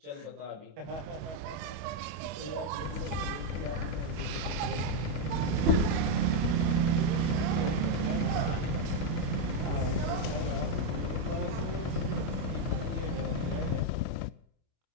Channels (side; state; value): left; late; 25 ms